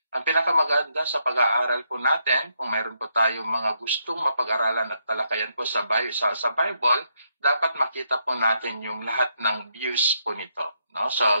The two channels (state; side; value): inverted; both; correlation -0.76